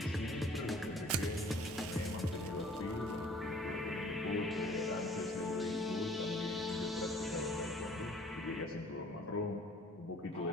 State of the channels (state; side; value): normal; both; correlation 0.53